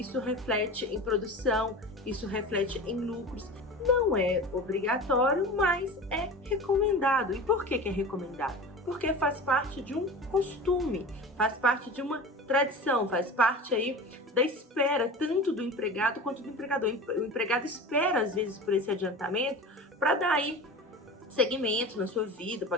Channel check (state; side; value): normal; both; correlation 0.33